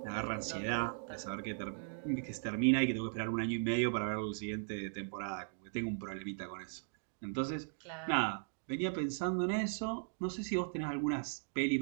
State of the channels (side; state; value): left; silent; digital silence